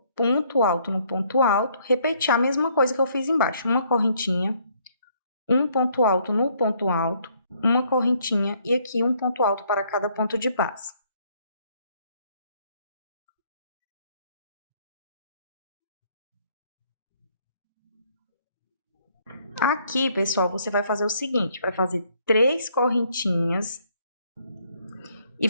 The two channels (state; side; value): inverted; both; correlation -0.66